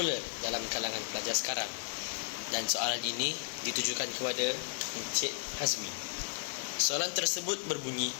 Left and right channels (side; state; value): right; silent; digital silence